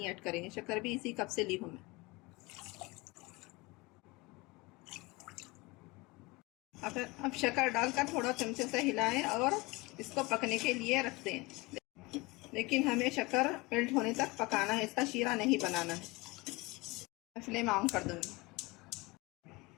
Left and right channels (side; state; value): right; quieter; 23.9 dB